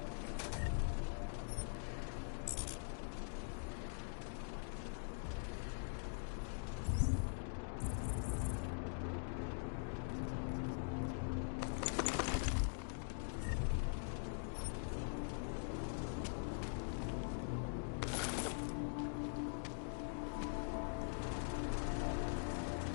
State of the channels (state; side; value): silent; right; digital silence